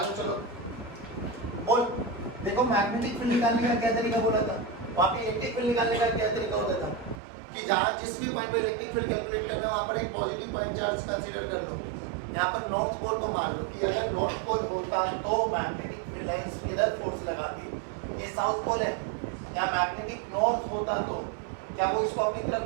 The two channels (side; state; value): left; drops out; at 7.2 s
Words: चलो बोल, देखो मैग्नेटिक फील्ड निकालने का क्या तरीका बोला था, वहाँ पे इलेक्ट्रिक फील्ड निकालने का क्या तरीका होता था कि जहाँ जिस भी पॉइंट पे इलेक्ट्रिक फील्ड कैलकुलेट करना है वहाँ पर एक पॉजिटिव पॉइंट चार्ज कंसीडर कर लो। यहाँ पर नॉर्थ पोल को मान लो कि अगर नॉर्थ पोल होता तो मैग्नेटिक फील्ड लाइंस इधर फोर्स लगाती, ये साउथ पोल है, यहाँ मैग्नेटिक नॉर्थ होता तो क्या वो इसको अपनी